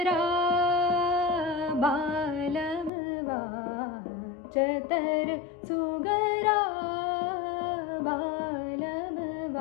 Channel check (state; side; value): drops out; right; at 2.9 s